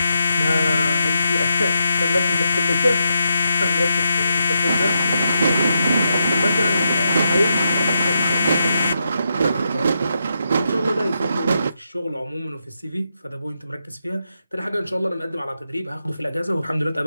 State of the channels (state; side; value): inverted; both; correlation -0.84